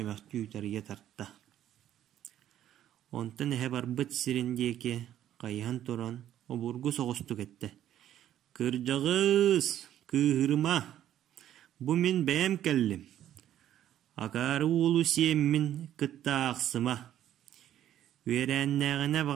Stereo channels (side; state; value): left; quieter; 11.5 dB